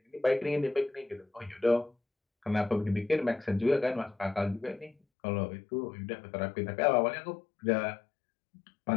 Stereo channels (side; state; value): right; drops out; at 5.0 s